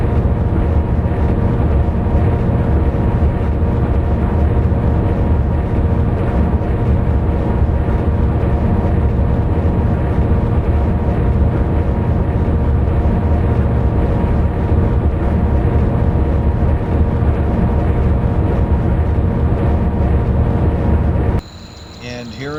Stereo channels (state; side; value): identical; both; correlation 1.00